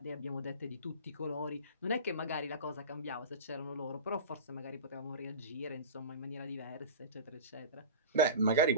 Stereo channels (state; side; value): inverted; both; correlation -0.32